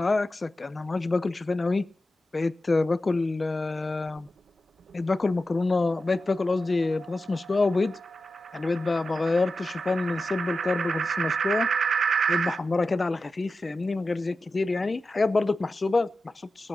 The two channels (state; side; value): normal; both; correlation 0.92